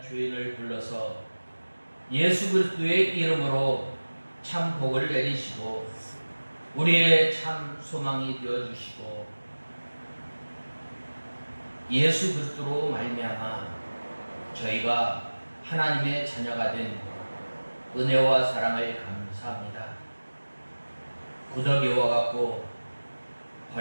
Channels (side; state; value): both; inverted; correlation -1.00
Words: 죄인을 불러서 예수 그리스도의 이름으로 참 복을 내리시고 우리의 참 소망이 되어주시고 예수 그리스도로 말미암아 저희가 하나님의 자녀가 된 은혜와 사랑을 감사합니다. 구더기와 같고